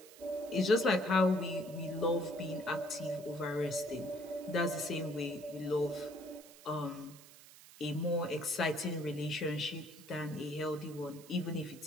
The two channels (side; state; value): right; noise; hiss, 20 dB below the sound